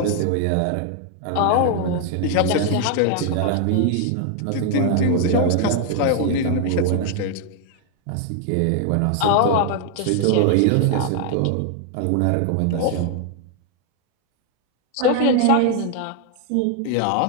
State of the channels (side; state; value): both; different; correlation 0.00